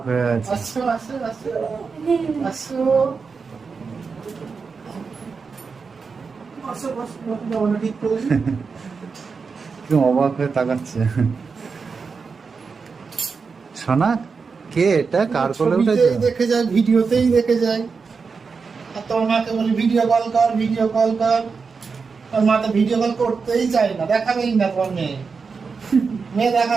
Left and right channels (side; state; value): left; quieter; 5.1 dB